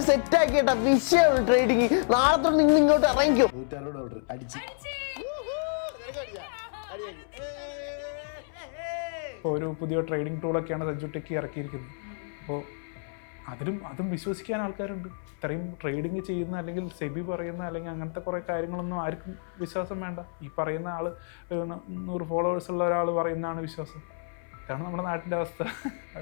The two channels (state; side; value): silent; right; 59 dB below the other